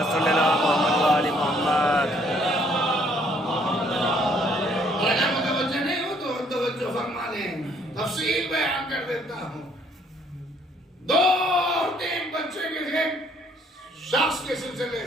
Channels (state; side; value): normal; both; correlation 0.65